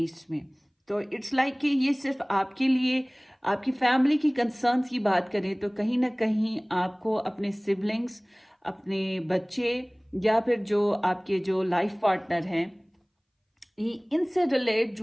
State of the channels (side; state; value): both; identical; correlation 1.00